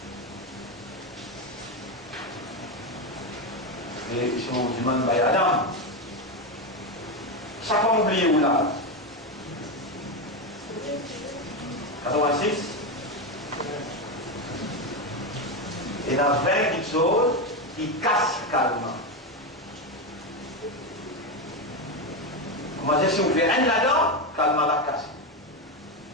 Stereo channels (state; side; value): normal; both; correlation 0.12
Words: Et si on vous demande, Adam, ça va oublier où là? 86. Et dans 20 petites choses qui cassent calmement. Comment dire, si vous faites un là-dedans, calmement la casse.